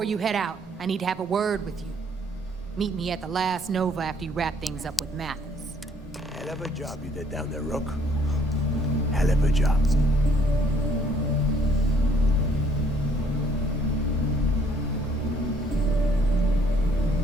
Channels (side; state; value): both; normal; correlation 0.63